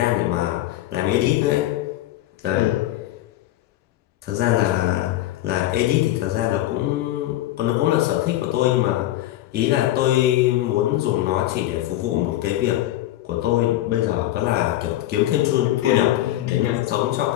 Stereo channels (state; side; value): quieter; right; 14.5 dB